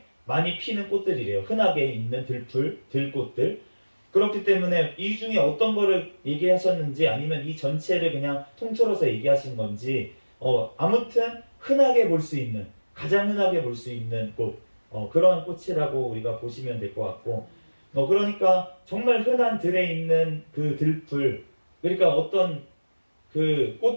많이 피는 꽃들이래요. 흔하게 있는 들꽃들. 그렇기 때문에 이 중에 어떤 거를 얘기하셨는지 아니면 이 전체를 그냥 통틀어서 얘기하신 건지 아무튼 흔하게 볼 수 있는 가장 흔하게 볼 수 있는 꽃 그러한 꽃이라고 우리가 보시면 될 것 같고 그러니까 정말 흔한 들에 있는 그 들풀 그러니까 어떤 그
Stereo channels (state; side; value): inverted; both; correlation -1.00